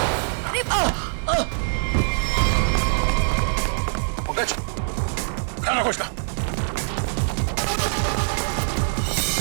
पंकज, खाना खोजना।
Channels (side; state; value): left; silent; 61 dB below the other